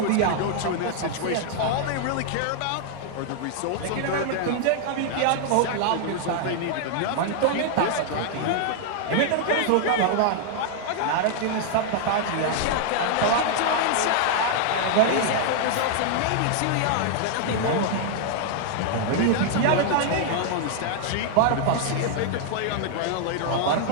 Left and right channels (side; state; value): both; different; correlation -0.01